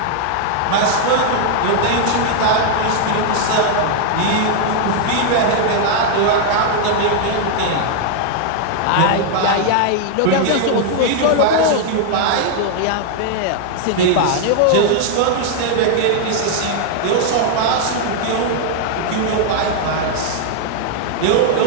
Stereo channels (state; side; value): different; both; correlation 0.00